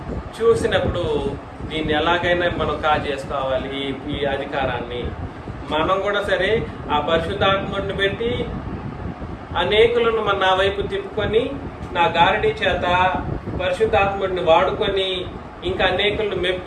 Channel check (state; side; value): identical; both; correlation 1.00